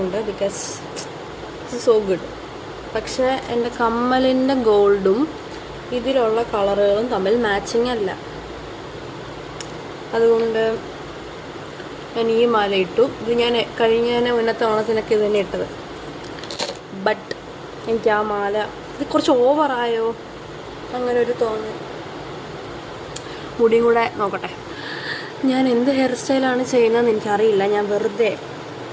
ബിക്കോസ് ഇറ്റ്സ് സോ ഗുഡ്. പക്ഷേ എൻ്റെ കമ്മലിൻ്റെ ഗോൾഡും ഇതിലുള്ള കളറുകളും തമ്മിൽ മാച്ചിങ് അല്ല. അതുകൊണ്ട് ഞാൻ ഈ മാല ഇട്ടു. ഇത് ഞാൻ മുന്നത്തെ ഓണത്തിനൊക്കെ ഇത് തന്നെ ഇട്ടത്. ബട്ട് എനിക്ക് ആ മാല ഇത് കുറച്ച് ഓവറായോ അങ്ങനെ ഒരു തോന്നൽ. മുടിയും കൂടെ നോക്കട്ടെ. ഞാൻ എന്ത് ഹെയർ സ്റ്റൈലാണ് ചെയ്യുന്നതെന്ന് എനിക്കറിയില്ല. ഞാൻ വെറുതെ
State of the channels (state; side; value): identical; both; correlation 1.00